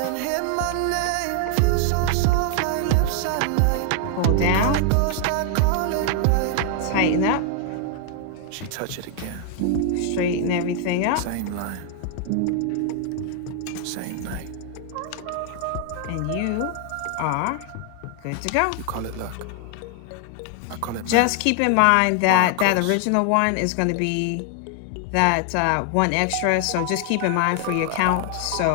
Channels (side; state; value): both; different; correlation 0.00